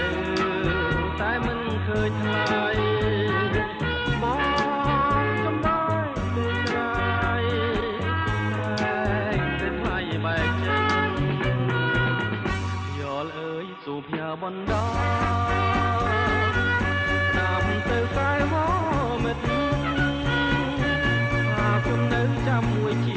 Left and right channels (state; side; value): identical; both; correlation 1.00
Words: តែមិនឃើញថ្ងៃបងចំបាយពេលក្រោយពេលថ្ងៃបែកចឹងយល់អើយសុភ័បណ្ដាតាមទៅកែវមិត្តថាខ្ញុំនៅចាំមួយជ